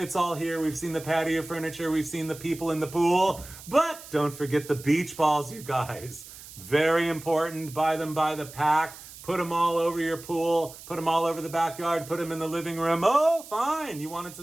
all here. We've seen the patio furniture. We've seen the people in the pool. But don't forget the beach balls, you guys. Very important. Buy them by the pack. Put them all over your pool. Put them all over the backyard. Put them in the living room. Oh, fine. You wanted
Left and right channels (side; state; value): right; noise; hiss, 16 dB below the sound